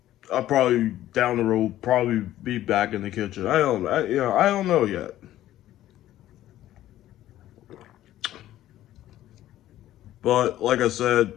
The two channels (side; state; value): right; quieter; 13.6 dB